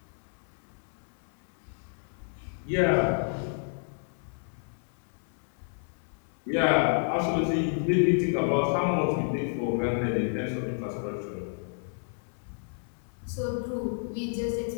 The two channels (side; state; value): right; silent; 58 dB below the other